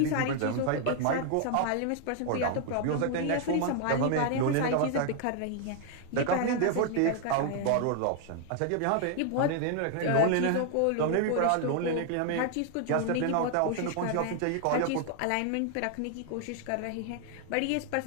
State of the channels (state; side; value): different; both; correlation 0.00